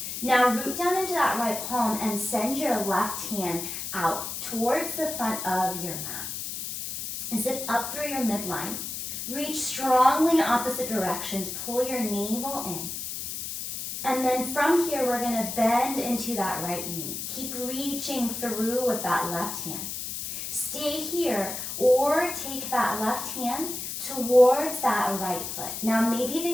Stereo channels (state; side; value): noise; left; hiss, 6 dB below the sound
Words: Now root down into that right palm and send your left hand out towards the front of your mat. Zip up through your midline. Reach strongly in opposite directions. Pull your navel in. And then from here, we're going to bend into that right knee. Keep reaching through with that left hand. Stay here, or take that left hand towards that right foot. Now maybe they